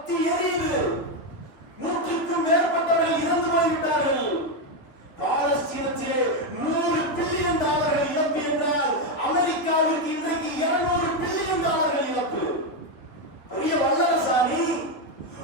எரியுது. 100க்கும் மேற்பட்டவர்கள் இறந்து போய்விட்டார்கள். பாலஸ்தீனத்திலே $100 பில்லியன் இழப்பு என்றால் அமெரிக்காவிற்கு இன்றைக்கு $200 பில்லியன் இழப்பு. பெரிய வல்லரசாணி.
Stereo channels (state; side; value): late; right; 3.6 ms